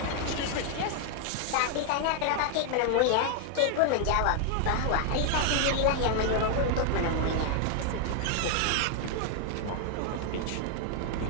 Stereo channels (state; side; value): different; both; correlation 0.00